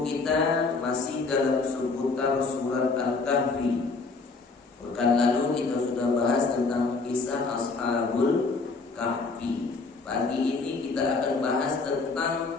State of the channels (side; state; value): right; quieter; 4.1 dB